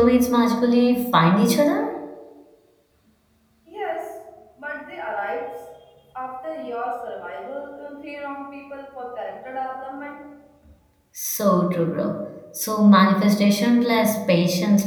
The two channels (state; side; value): identical; both; correlation 1.00